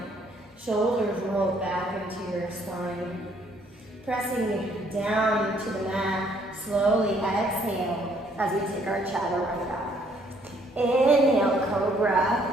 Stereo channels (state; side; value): normal; both; correlation 0.65